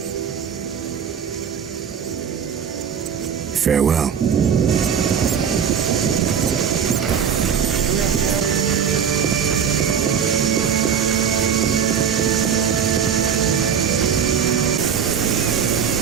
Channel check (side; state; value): left; quieter; 7.7 dB